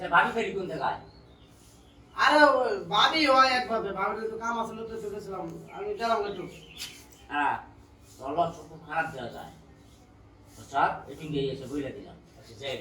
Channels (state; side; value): identical; both; correlation 1.00